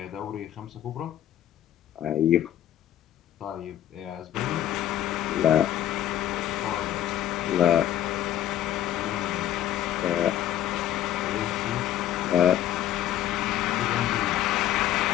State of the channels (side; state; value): right; quieter; 12.0 dB